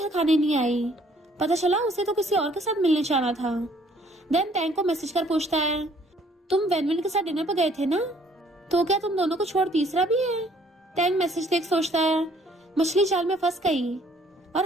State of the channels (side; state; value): both; normal; correlation 0.61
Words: खाने नहीं आई, पता चला उसे तो किसी और के साथ मिलने जाना था। देन टैंग को मैसेज कर पूछता है तुम वैनवन के साथ डिनर पर गए थे ना, तो क्या तुम दोनों को छोड़ तीसरा भी है? टैंग मैसेज देख सोचता है मछली जाल में फंस गई